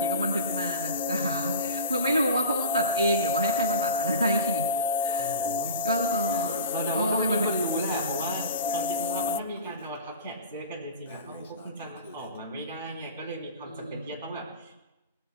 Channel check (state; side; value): inverted; both; correlation -0.35